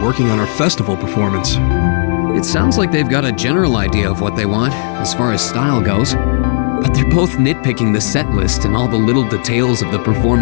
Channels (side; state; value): right; silent; digital silence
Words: on our festival performance. It sounds like they've got a general idea of what they want, as far as style goes. But they're both nitpicking the set list and all the little details of the